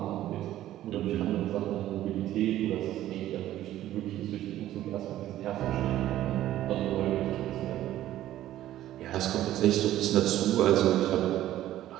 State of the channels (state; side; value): quieter; left; 13.5 dB